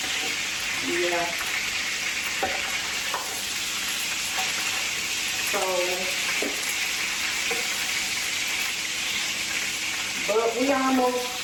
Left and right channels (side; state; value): both; identical; correlation 1.00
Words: yeah. So, but we